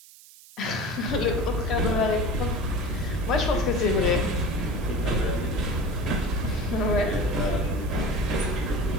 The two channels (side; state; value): right; noise; hiss, 22 dB below the sound